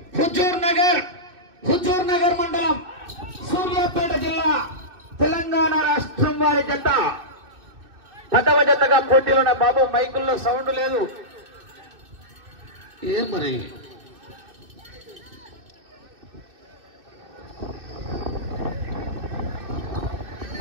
హుజూర్ నగర్ మండలం సూర్యాపేట జిల్లా తెలంగాణ రాష్ట్రం వారి జత 10వ జతగా పోటీలోనే బాబు మైకుల్లో సౌండ్ లేదు ఏం మరి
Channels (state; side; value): late; left; 2.6 ms